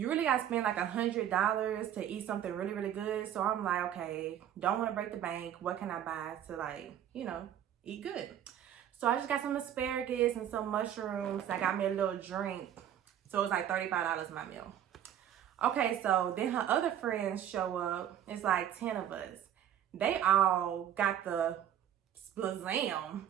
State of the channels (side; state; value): left; quieter; 10.4 dB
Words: really gotta spend like $100 to eat something really, really good. So I'm like, okay, don't want to break the bank. What can I buy to like, eat good? So I just got some asparagus and some mushrooms. I got me a little drink. So it was like $35 my meal. Okay, so then her other friends show up. It's like 10 of us. They all got the splazam,